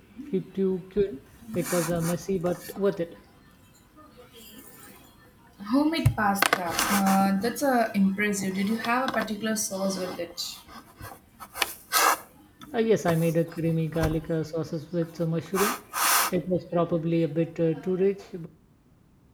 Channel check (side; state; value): both; identical; correlation 1.00